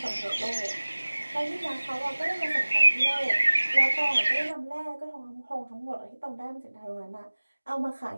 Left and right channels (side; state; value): both; inverted; correlation -1.00